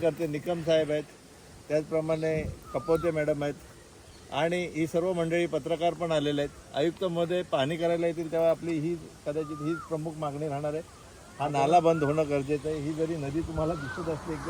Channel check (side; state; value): both; identical; correlation 1.00